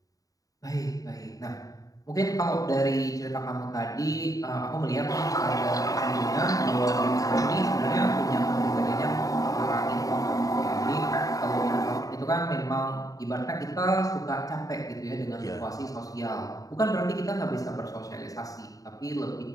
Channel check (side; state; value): right; late; 0.17 ms